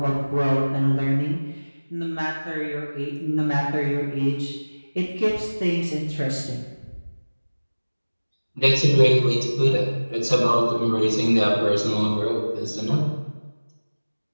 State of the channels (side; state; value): both; inverted; correlation -1.00